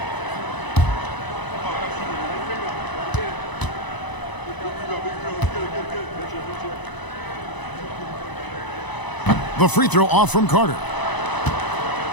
The free throw off from Carter.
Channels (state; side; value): late; right; 1.0 ms